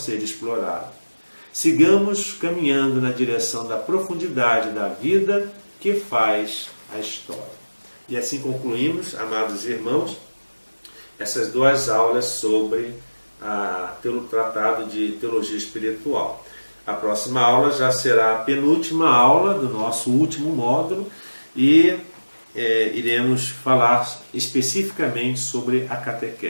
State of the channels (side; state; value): both; inverted; correlation -1.00